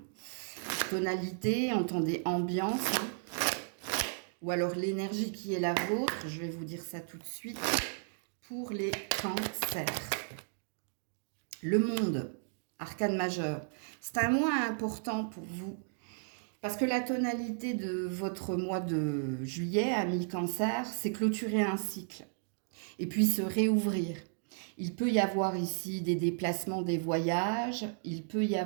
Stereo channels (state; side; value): silent; left; digital silence